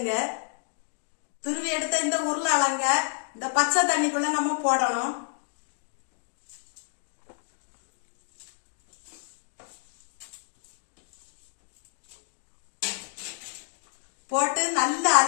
துருவி எடுத்த இந்த உருளைக்கிழங்க இந்த பச்சை தண்ணிக்குள்ள நம்ம போடணும். போட்டு நல்லா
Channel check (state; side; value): silent; right; 58 dB below the other